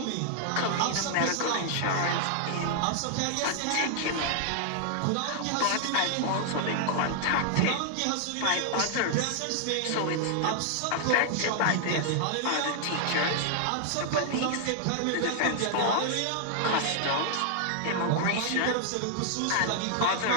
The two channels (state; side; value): different; both; correlation 0.00